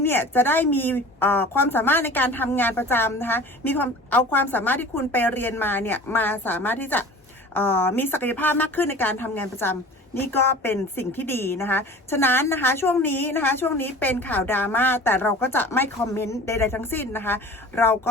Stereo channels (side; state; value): both; normal; correlation 0.41